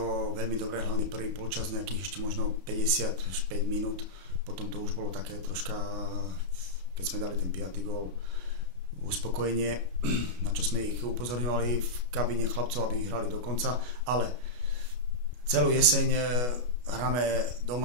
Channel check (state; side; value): late; left; 33 ms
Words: veľmi dobre, hlavne prvý polčas nejakých ešte možno 55 minút, potom to už bolo také troška, keď sme dali ten 5. gól, uspokojenie, na čo sme ich upozorňovali v kabíne chlapcov, aby hrali do konca, ale celú jeseň hráme